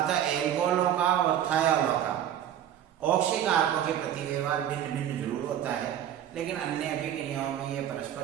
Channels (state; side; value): quieter; left; 10.5 dB